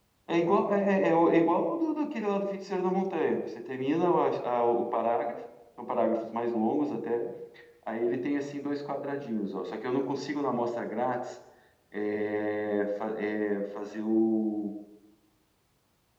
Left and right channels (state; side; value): identical; both; correlation 1.00